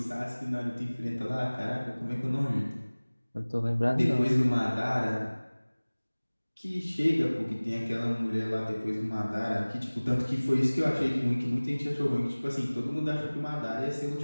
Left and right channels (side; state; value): both; inverted; correlation -1.00